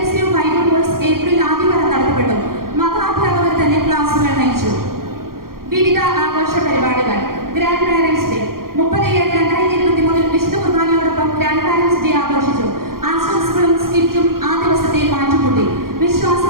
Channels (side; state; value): left; late; 0.92 ms